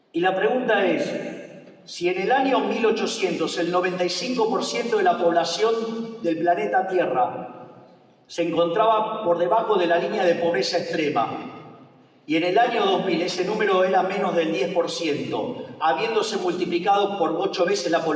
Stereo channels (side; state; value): both; identical; correlation 1.00